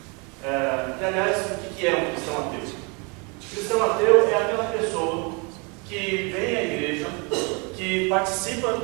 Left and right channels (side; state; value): left; quieter; 31.7 dB